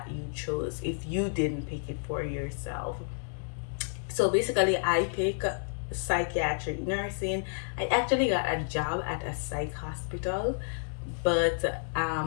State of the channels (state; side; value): silent; right; digital silence